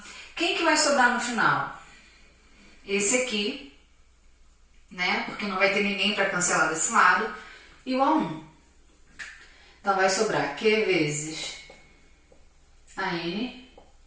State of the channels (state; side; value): identical; both; correlation 1.00